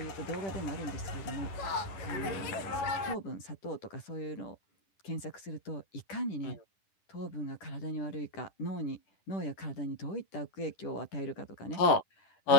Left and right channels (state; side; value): late; right; 11 ms